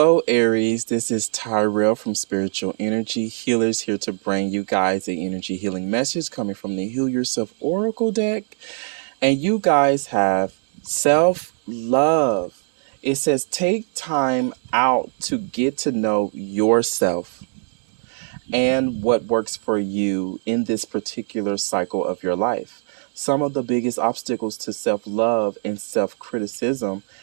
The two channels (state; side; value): silent; left; digital silence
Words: Aries. This is Tyrell from Spiritual Energy Healers, here to bring you guys an energy healing message coming from the Heal Yourself Oracle deck. And you guys have self-love. It says take time out to get to know yourself and what works for you in this particular cycle of your life. Some of the biggest obstacles to self-love and self-criticism